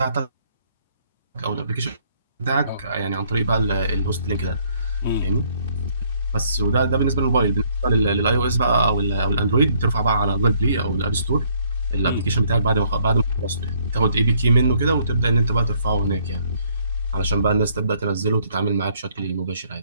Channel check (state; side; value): inverted; both; correlation -0.66